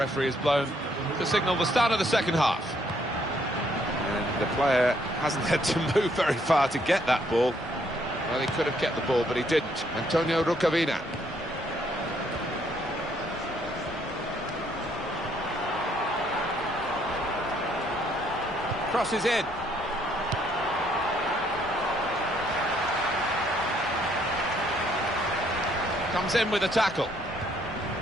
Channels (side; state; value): both; normal; correlation 0.68